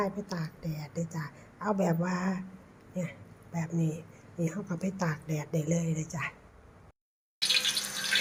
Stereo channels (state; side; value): identical; both; correlation 1.00